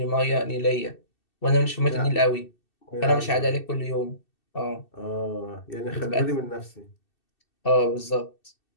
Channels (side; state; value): right; late; 2.7 ms